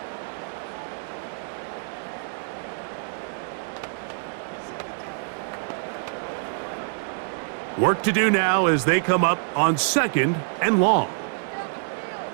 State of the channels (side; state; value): left; silent; digital silence